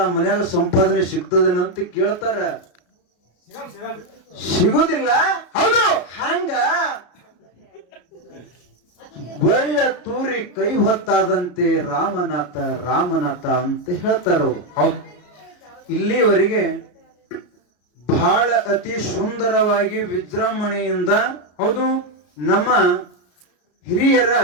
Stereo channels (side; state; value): right; late; 33 ms